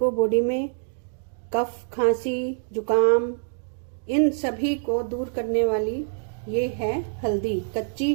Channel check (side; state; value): left; silent; digital silence